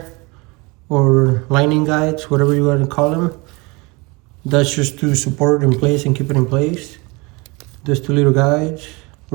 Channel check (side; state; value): left; quieter; 26.3 dB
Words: or lining guides, whatever you want to call them. That's just to support it in place and keep it in place. There's 2 little guides